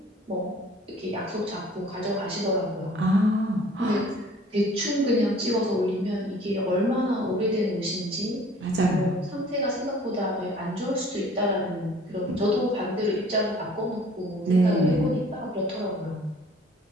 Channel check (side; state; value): both; normal; correlation 0.52